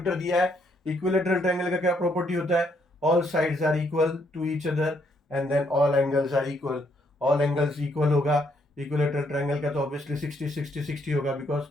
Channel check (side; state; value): both; normal; correlation 0.72